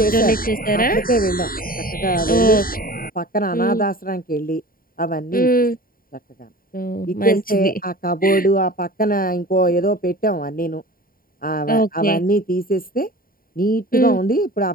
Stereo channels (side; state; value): right; late; 0.42 ms